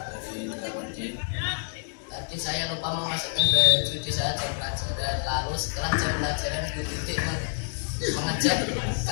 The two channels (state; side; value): silent; right; 60 dB below the other